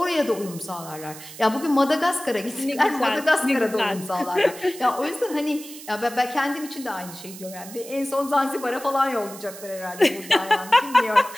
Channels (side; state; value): right; noise; hiss, 15 dB below the sound